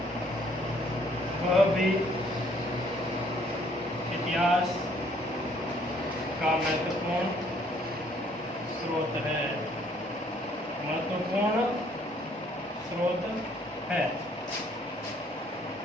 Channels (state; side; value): normal; both; correlation 0.63